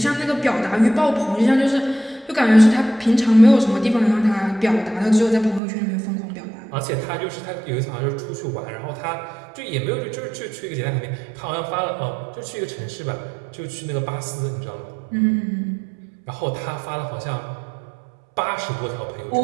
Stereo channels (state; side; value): drops out; left; at 5.6 s